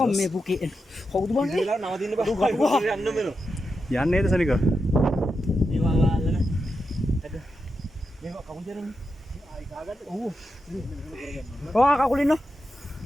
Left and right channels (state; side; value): normal; both; correlation 0.87